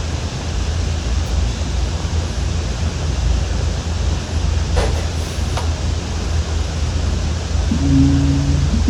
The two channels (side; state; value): both; identical; correlation 1.00